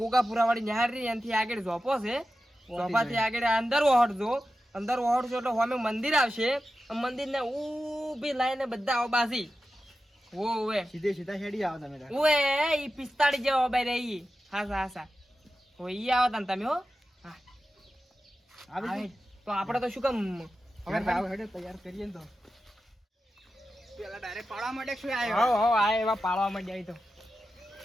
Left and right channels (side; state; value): both; normal; correlation 0.92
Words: વાળી નિહાળ રી એનથી આગળ ઝોપો છે. ઝોપાથી આગળ અંદર ઓહડજો. અંદર ઓહડજો એટલે સામે મંદિર આવશે. મંદિરને ઊભી લાઈને બધા ઓબાસી ઓવે સીધે સીધા હેડી આવો તમે તાર. ઓએ ઈ 45 જેવો ઓબાઈ રહી. હાસા ઓય ઈ આવો તને તમે હો. હા આવી આવે. તો આપણે તો શું કામ હવે આવો હેડે તૈયાર કરીએ ને તો પેલા ડાયરેક્ટ પાડવા માટે શું આવ્યો? હો આ એવા પાળવા માંડ્યા ઈ તો.